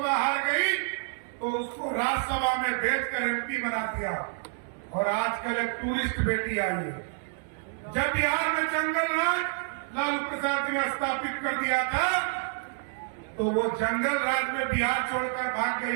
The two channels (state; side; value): silent; left; 59 dB below the other